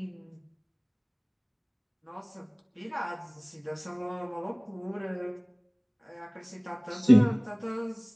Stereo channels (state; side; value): identical; both; correlation 1.00